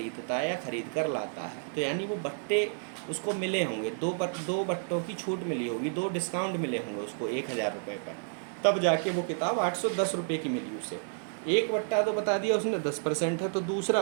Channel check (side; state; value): left; silent; 57 dB below the other